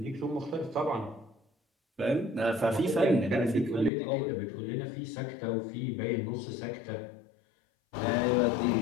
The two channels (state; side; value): drops out; right; at 3.9 s